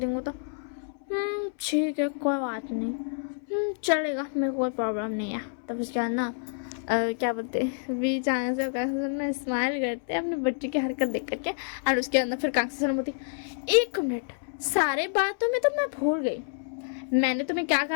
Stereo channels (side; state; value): right; silent; 59 dB below the other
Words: तो ठीक है कोई बात नहीं, चलेगा, मेरे को कोई प्रॉब्लम नहीं है। तब उसके बाद ना क्या बोलते हैं, वी चांग से कांग्स ना स्माइल करते हैं अपने बच्चे की हरकत देख करके। और उसके अंदर फिर कांग्स बोलती, 1 मिनट, सारे बातों में तो मैं भूल गई, मैंने तुम्हें क्या